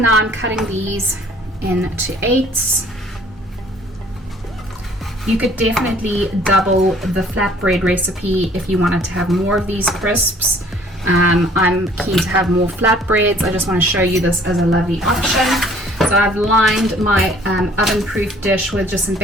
now I'm cutting these into 8s. You could definitely double the flatbread recipe if you wanted to have more of these crisps. I'm keen to have more flatbreads. I just want to show you this as a lovely option. So I've lined my oven-proof dish with just some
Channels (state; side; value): normal; both; correlation 0.56